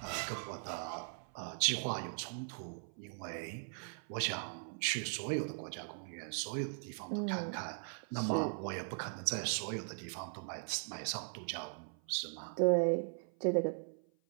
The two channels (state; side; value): silent; left; 52 dB below the other